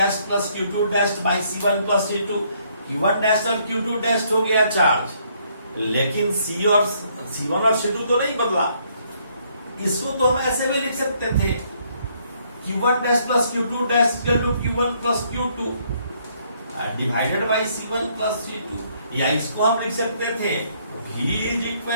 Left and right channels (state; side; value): inverted; both; correlation -0.68